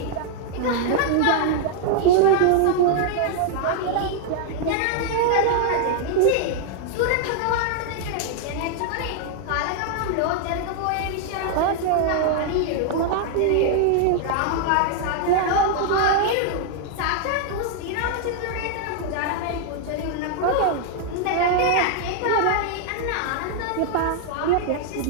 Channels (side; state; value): both; different; correlation 0.00